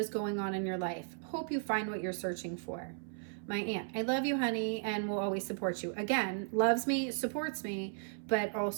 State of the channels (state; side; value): silent; left; 54 dB below the other